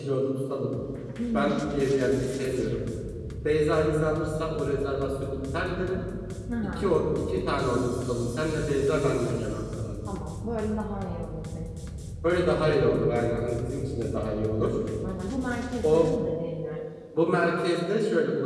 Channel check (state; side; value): identical; both; correlation 1.00